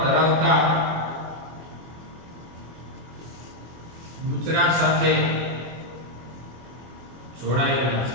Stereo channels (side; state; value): left; late; 24 ms